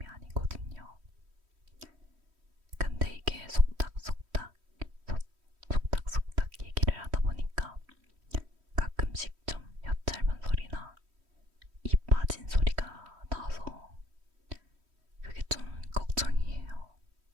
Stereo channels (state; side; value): late; left; 3.1 ms